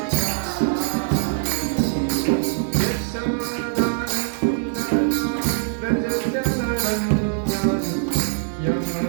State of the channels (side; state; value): left; silent; digital silence